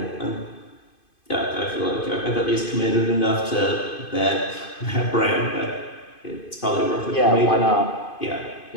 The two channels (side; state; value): right; late; 2.5 ms